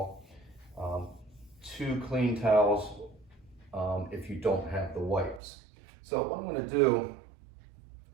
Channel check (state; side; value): drops out; left; at 5.4 s